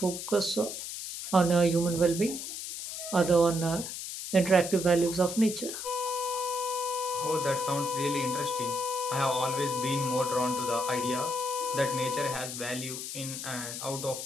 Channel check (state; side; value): noise; left; hiss, 7 dB below the sound